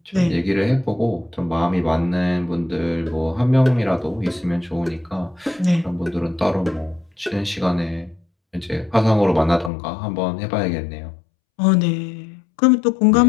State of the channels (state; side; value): drops out; right; at 9.7 s